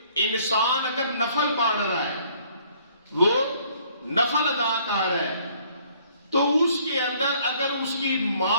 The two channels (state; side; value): inverted; both; correlation -0.60